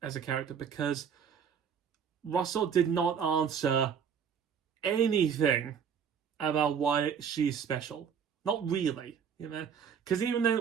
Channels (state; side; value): quieter; left; 7.4 dB